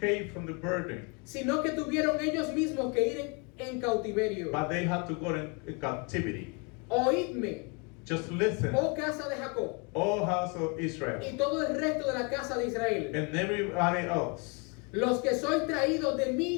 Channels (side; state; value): right; quieter; 32.9 dB